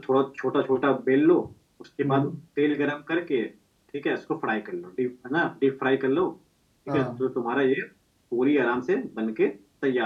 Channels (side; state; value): both; identical; correlation 1.00